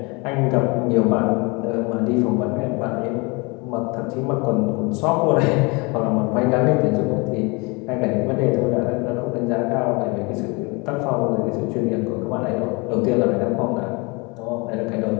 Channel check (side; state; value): right; quieter; 28.2 dB